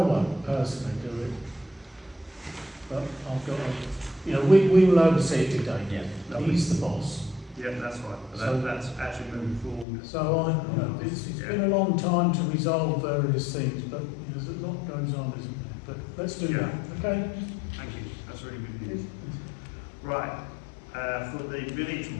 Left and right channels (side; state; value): right; drops out; at 9.9 s